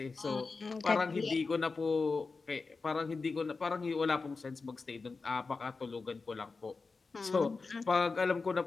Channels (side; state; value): right; quieter; 4.2 dB